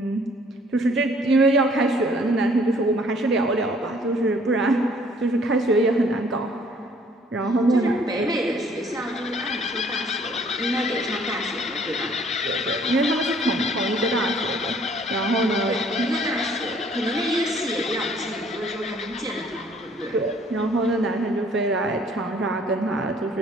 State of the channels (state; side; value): normal; both; correlation 0.59